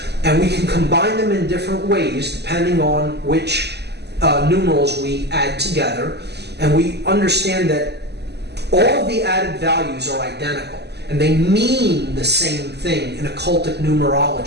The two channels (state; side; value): late; left; 0.49 ms